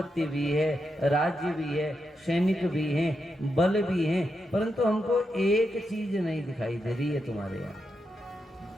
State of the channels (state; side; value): normal; both; correlation 0.85